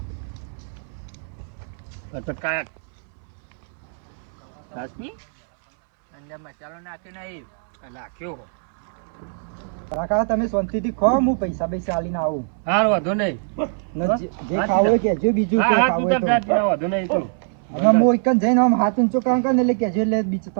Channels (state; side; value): silent; left; 64 dB below the other